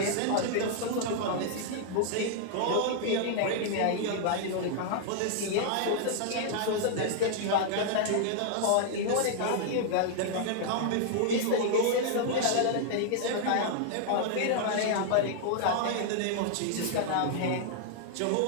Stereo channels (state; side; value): different; both; correlation -0.01